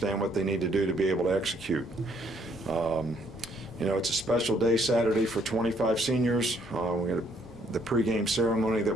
what they need to do to be able to execute. It's a special day Saturday for 25 seniors. We got the pregame ceremony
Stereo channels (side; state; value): both; normal; correlation 0.68